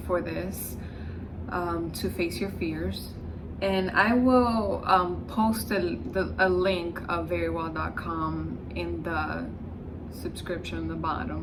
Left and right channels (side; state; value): both; identical; correlation 1.00